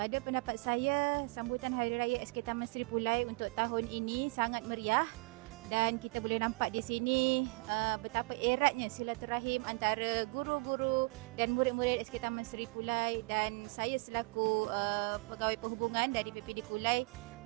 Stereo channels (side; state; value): left; quieter; 28.9 dB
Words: pendapat saya, sambutan Hari Raya SK Taman Sri Pulai untuk tahun ini sangat meriah dan kita boleh nampak di sini betapa eratnya silaturahim antara guru-guru dan murid-murid SK Taman Sri Pulai, dan saya selaku pegawai perhubungan dari PPD Kulai